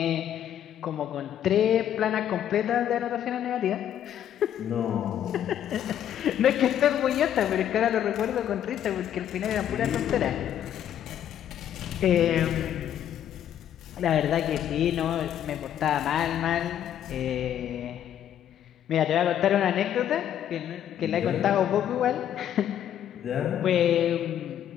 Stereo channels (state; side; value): quieter; right; 10.4 dB